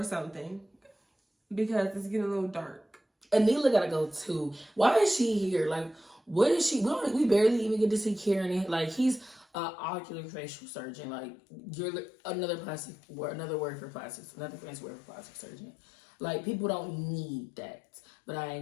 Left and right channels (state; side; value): drops out; right; at 9.6 s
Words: something, because it's getting a little dark. Anila gotta go too. Why is she here? Like, what is she? We barely even get to see Karen. Like, he's Oculofacial surgeon. Like, you're another word for plastics, another fancy word for plastic surgeon. Like, people don't need that, but I